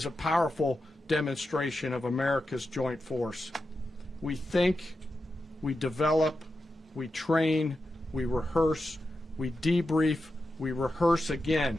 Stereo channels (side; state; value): both; normal; correlation 0.90